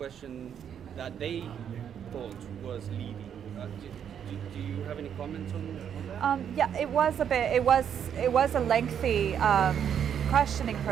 that they thought was leading. Do you have any comments on that? Yeah, it was a lengthy questioning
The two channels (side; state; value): left; quieter; 8.6 dB